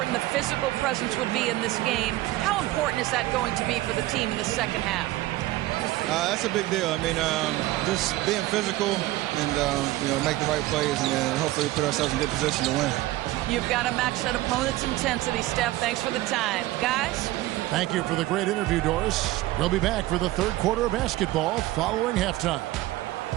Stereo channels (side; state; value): left; quieter; 17.2 dB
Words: the physical presence would be in this game. How important is that going to be for the team in the second half? That's a big deal. I mean, just being physical and, make the right plays and then hopefully put ourselves in good position to win. You've got to match that opponent's intensity, Steph. Thanks for the time. Guys? Thank you for the great interview, Doris. We'll be back for the 3rd quarter of basketball following halftime.